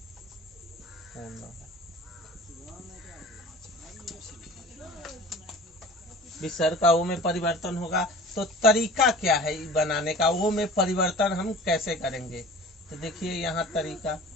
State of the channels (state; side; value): normal; both; correlation 0.41